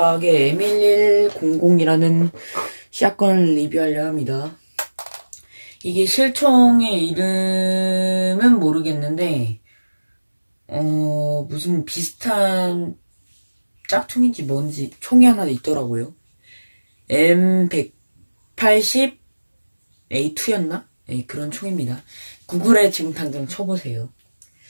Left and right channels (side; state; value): both; inverted; correlation -1.00